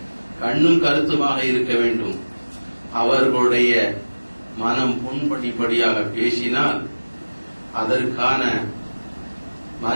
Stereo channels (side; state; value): both; inverted; correlation -1.00